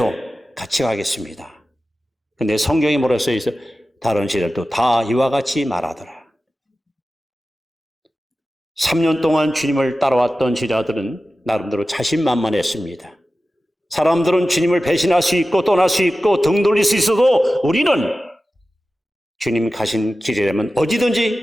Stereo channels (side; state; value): both; normal; correlation 0.94